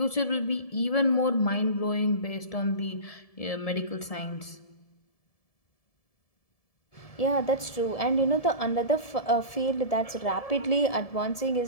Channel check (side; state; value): right; late; 1.7 ms